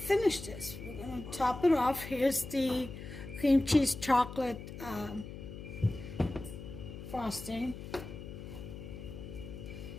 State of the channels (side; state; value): left; noise; hum, 11 dB below the sound